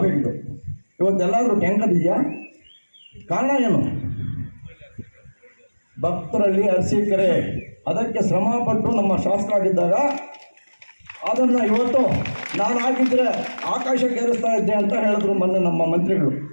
ಇವತ್ತೆಲ್ಲಾದರೂ ಟ್ಯಾಂಕರ್ ಇದೆಯಾ? ಕಾರಣ ಏನು? ಭಕ್ತರಲ್ಲಿ ಅರಸೀಕೆರೆ ಅದಕ್ಕೆ ಶ್ರಮಪಟ್ಟು ನಮ್ಮ ಶಾಸಕರಾಗಿದ್ದಾಗ ಅದನ್ನು ಇವತ್ತು ನಾನು ಆಗಿದ್ದರೆ ಆಕಾಶಕ್ಕೆ ಏರಿಸ್ತಾ ಇದ್ದೆ ಅಂತ ಹೇಳಿದ್ರು ಮೊನ್ನೆ ನಮ್ಮ ಮಂತ್ರಿಗಳು.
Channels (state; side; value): inverted; both; correlation -1.00